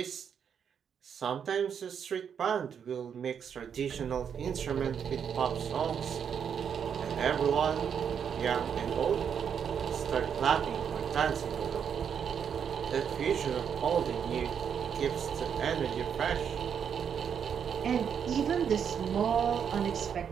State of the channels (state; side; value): quieter; left; 7.6 dB